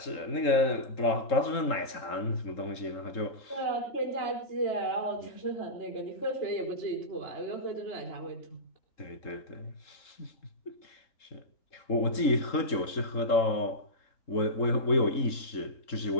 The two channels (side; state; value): right; late; 3.8 ms